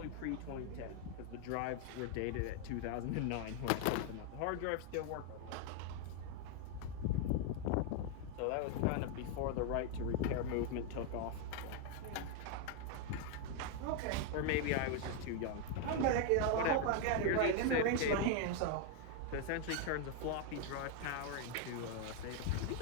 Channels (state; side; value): different; both; correlation 0.00